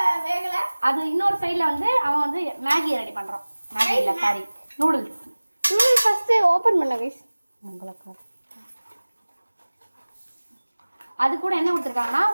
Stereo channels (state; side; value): inverted; both; correlation -1.00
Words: வேகல அது இன்னொரு சைடுல வந்து அவன் வந்து மேகி ரெடி பண்றான். மேகி இல்ல sorry noodles. Noodles first open பண்ணு गाइस. உங்களுக்கு அது கூட என்ன கொடுத்திருக்காங்கன்னா